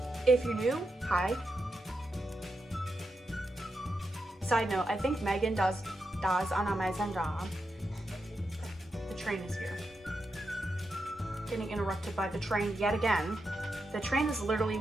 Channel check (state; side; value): normal; both; correlation 0.86